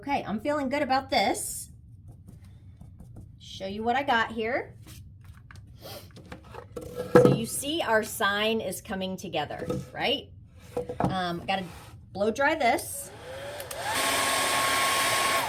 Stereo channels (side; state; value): both; identical; correlation 1.00